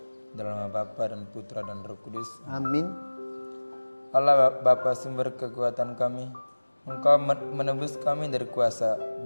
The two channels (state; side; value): inverted; both; correlation -1.00